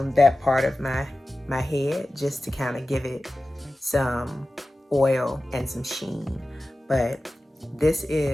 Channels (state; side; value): normal; both; correlation 0.95